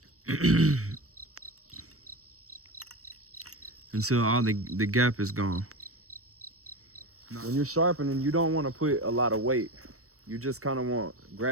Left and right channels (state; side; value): late; left; 0.65 ms